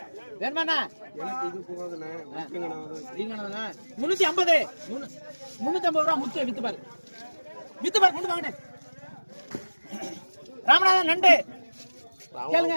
வேணுமாண்ணா 350 ரூபாய் முத்து வித்து பாரு கொண்டு வாங்க. ராமநாதன் நண்டு கேளுங்க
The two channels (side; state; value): both; inverted; correlation -1.00